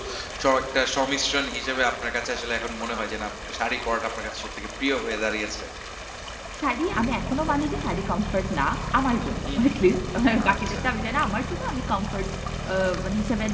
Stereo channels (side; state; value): both; identical; correlation 1.00